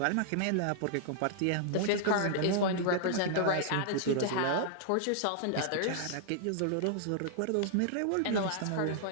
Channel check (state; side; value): different; both; correlation -0.01